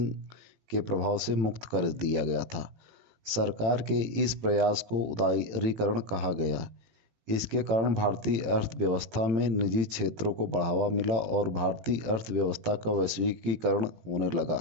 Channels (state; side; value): late; left; 18 ms